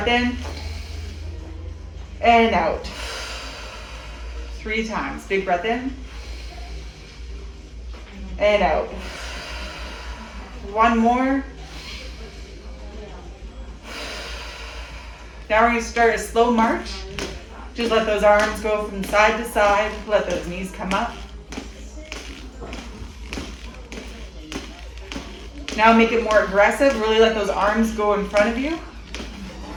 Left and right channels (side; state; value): both; identical; correlation 1.00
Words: in and out. 3 times. Big breath in and out. 1 more. Now we're going to start a slow march. Just let those arms go from side to side. Let those knees come up. Now make it more aggressive. Really let those arms go in front of you.